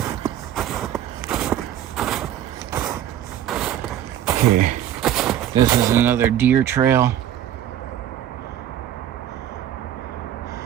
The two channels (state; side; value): quieter; left; 11.1 dB